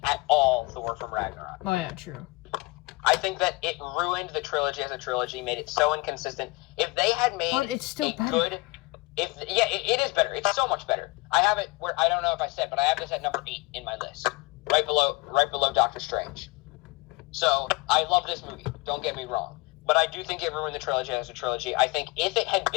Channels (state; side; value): quieter; right; 23.5 dB